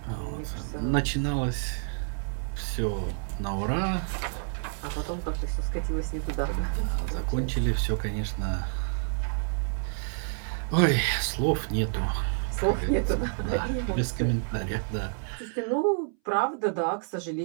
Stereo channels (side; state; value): left; silent; 59 dB below the other